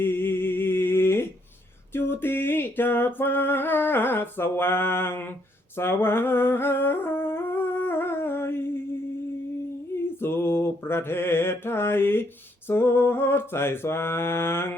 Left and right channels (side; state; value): both; normal; correlation 0.72